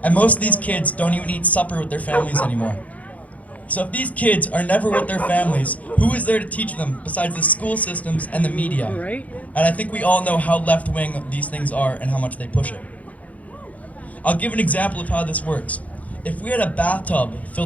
And most of these kids don't even eat supper with their families anymore. So if these kids are never with their families, who is there to teach them besides the school systems and the media? Right. And I think we all know how left-wing these things are and how much they push it. I'll give an example of how this works. If we had a bathtub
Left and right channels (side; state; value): right; late; 0.071 ms